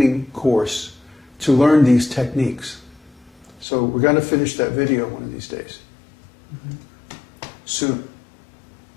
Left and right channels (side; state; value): right; drops out; at 3.7 s